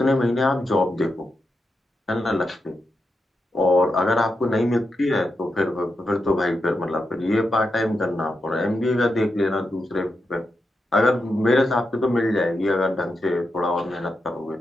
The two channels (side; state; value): both; normal; correlation 0.86